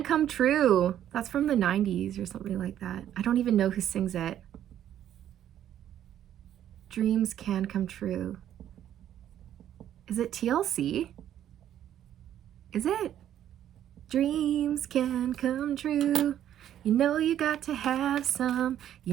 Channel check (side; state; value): left; quieter; 11.0 dB